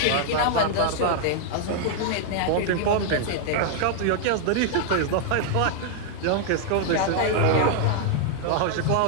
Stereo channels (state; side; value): different; both; correlation 0.00